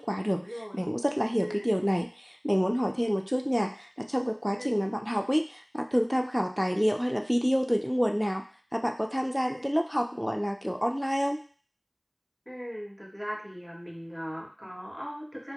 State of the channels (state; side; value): identical; both; correlation 1.00